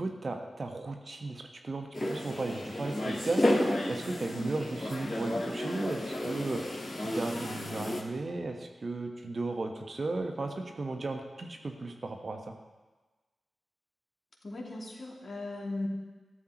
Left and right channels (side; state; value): both; normal; correlation 0.94